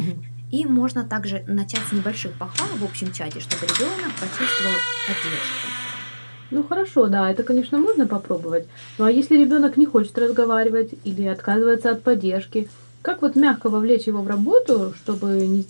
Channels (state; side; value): inverted; both; correlation -1.00